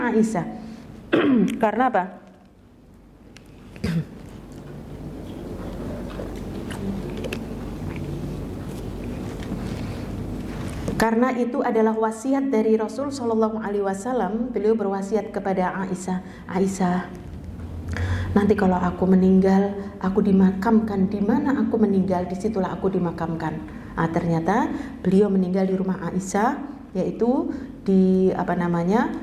Aisyah. Karena apa? Karena itu adalah wasiat dari Rasul Sallallahu Alaihi Wasallam. Beliau berwasiat kepada Aisyah, Aisyah, nanti kalau aku meninggal, aku dimakamkan di mana aku meninggal, disitulah aku dimakamkan. Ternyata beliau meninggal di rumah Aisyah, yaitu di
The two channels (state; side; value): identical; both; correlation 1.00